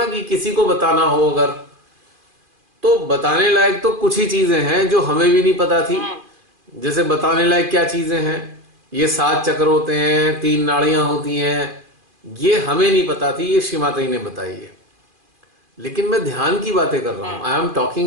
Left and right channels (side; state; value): left; late; 2.5 ms